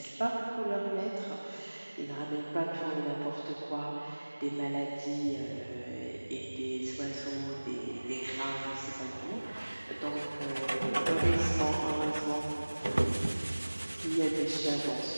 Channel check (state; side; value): inverted; both; correlation -1.00